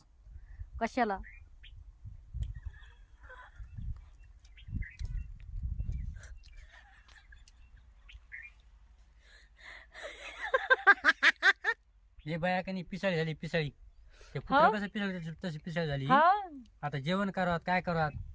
कशाला हे बाया कनी पिसाळी झाली पिसाळी. ते कुत्रा कसं पिसाळी तशी पिसाळी झाली. हा आता जेवण करावं काय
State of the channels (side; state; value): both; identical; correlation 1.00